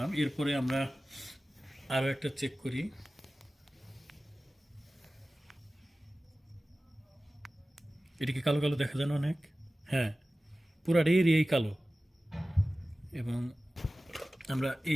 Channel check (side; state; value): both; normal; correlation 0.96